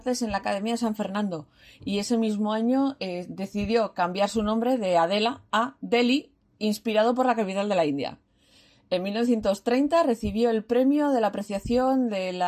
en la Academia de San Fernando. Y ese mismo año decidió cambiar su nombre de Adela a Delhi, inspirado por la capital de la India. En 1930 recibió el premio de la apreciación de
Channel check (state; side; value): identical; both; correlation 1.00